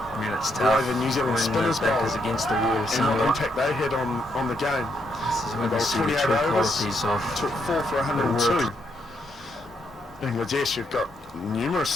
the New Zealand spinners bowled is against the wall and what impact they had on the game. This is when they you see the 28 true overs, qualities of took 4 for 102. Bangladesh, you've got numerous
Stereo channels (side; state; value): both; normal; correlation 0.77